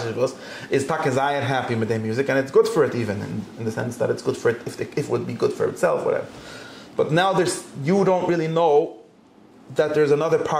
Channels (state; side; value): identical; both; correlation 1.00